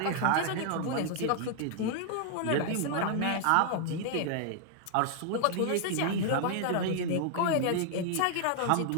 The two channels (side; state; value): both; different; correlation 0.00